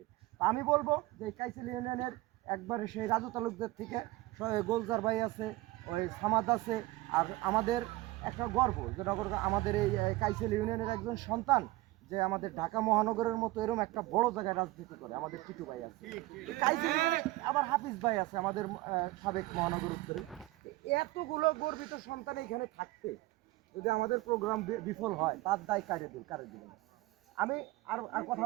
আমি বলবো যে কাইসেল ইউনিয়নের একবারে সেই রাজু তালুকদের থেকে গোলজার ভাই আছে, ওই সামাদ আছে, আর আমাদের একটা গর্ব যে আমাদের এই কাইসেল ইউনিয়নের একজন সন্তান যে আমাদের ঢাকা মহানগরের মতো এরকম একটা বড় জায়গায় রাজনীতি করে, আমাদের টিটু ভাই আছে। কাইসেল আবার হাফিজ ভাই আছে আমাদের সাবেক মহানগর উত্তরে। এতগুলো গর্বিত সন্তান এখানে থাকতে যদি আমাদের প্রোগ্রাম বিফল হয়, তার দায় কারে দিবেন। আমি আর কথা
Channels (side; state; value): left; quieter; 19.3 dB